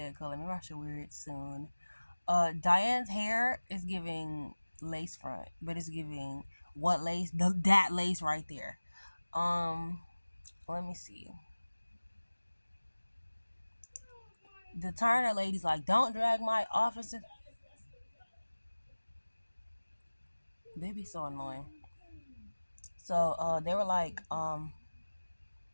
color. Maybe I should wear it soon. Diane's hair is giving lace front, but it's giving what lace? That lace right there. Let me see. The Turner lady's like, don't drag my officer. They be so annoying. So they were like,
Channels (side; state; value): both; inverted; correlation -1.00